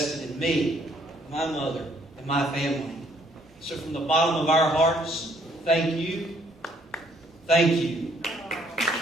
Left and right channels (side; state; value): both; normal; correlation 0.66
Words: in me, my mother, and my family. So from the bottom of our hearts, thank you. Thank you.